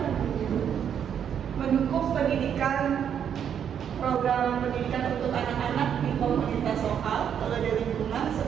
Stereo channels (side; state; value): left; quieter; 8.5 dB